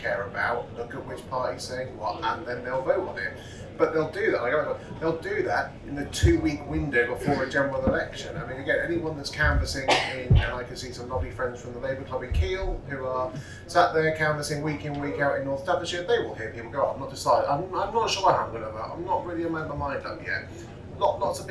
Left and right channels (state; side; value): identical; both; correlation 1.00